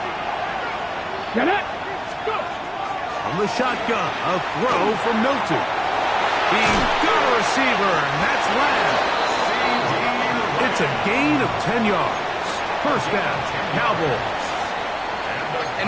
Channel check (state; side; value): identical; both; correlation 1.00